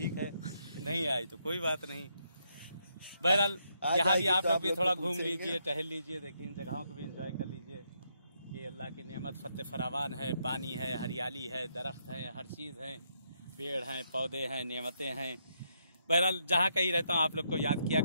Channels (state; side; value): inverted; both; correlation -0.77